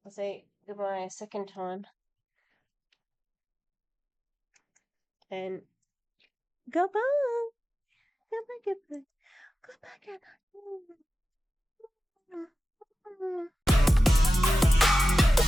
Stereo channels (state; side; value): normal; both; correlation 0.94